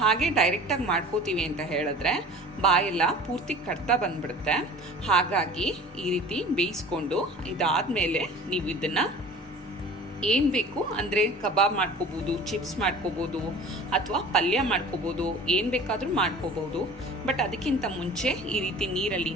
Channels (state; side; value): normal; both; correlation 0.42